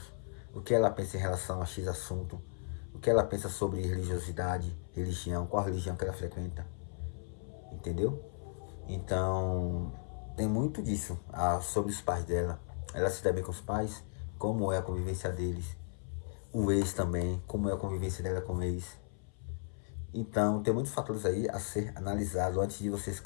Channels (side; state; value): right; silent; 54 dB below the other